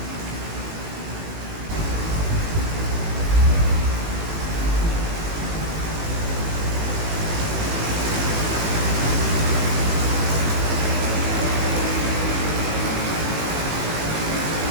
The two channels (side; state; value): left; late; 18 ms